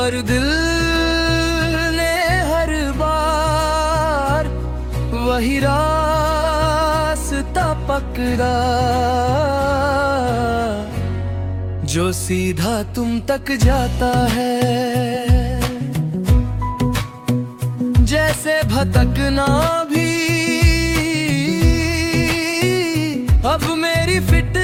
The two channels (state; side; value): identical; both; correlation 1.00